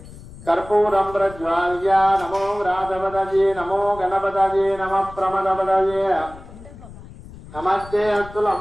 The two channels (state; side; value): noise; left; rumble, 17 dB below the sound